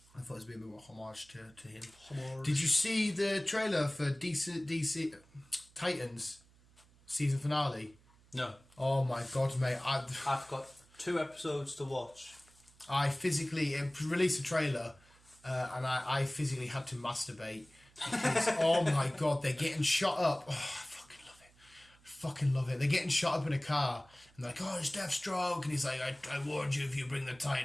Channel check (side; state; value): right; noise; hum, 28 dB below the sound